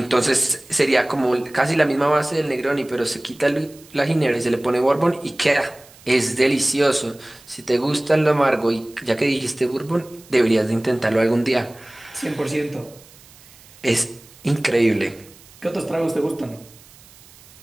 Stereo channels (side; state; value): right; noise; hiss, 24 dB below the sound